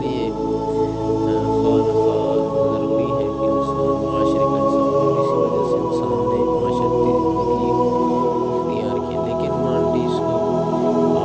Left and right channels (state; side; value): identical; both; correlation 1.00